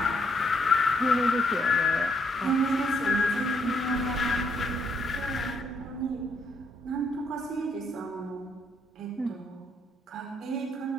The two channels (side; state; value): both; normal; correlation 0.74